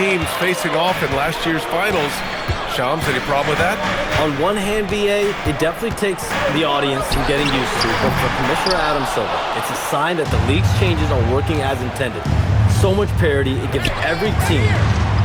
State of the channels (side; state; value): both; identical; correlation 1.00